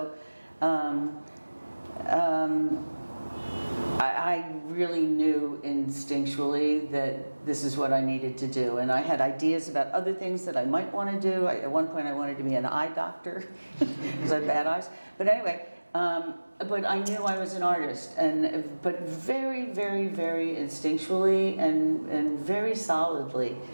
I really knew instinctually that this is what I needed to do. And I had ideas about other things that I might want to do. At one point I wanted to be an eye doctor because I have bad eyes. But anyway, but I knew I was an artist, but very, very, very instinctually and very solidly.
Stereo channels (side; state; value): both; inverted; correlation -1.00